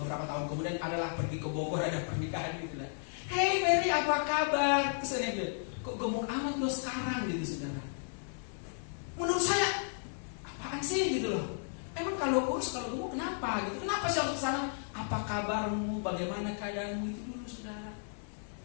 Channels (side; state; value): right; silent; 55 dB below the other